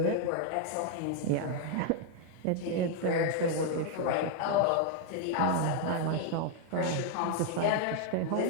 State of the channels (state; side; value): different; both; correlation 0.00